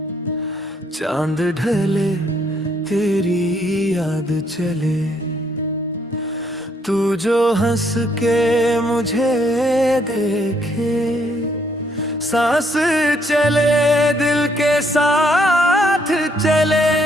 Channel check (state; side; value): normal; both; correlation 0.70